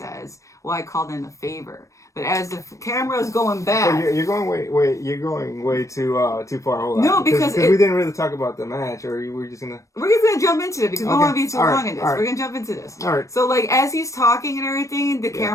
well, I called in a favor. But as the camera is going back... You're going way too far. Hold on. No, because we didn't really talk about the match. Or we're just going to... We're just going to jump into it because we don't want to be too long in this. Right. We're going to jump into this. All right. So, like, as he's talking and everything, the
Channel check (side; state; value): right; late; 0.15 ms